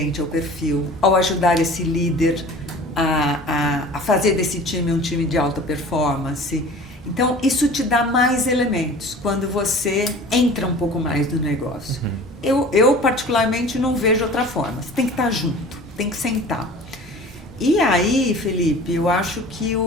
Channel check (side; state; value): both; normal; correlation 0.42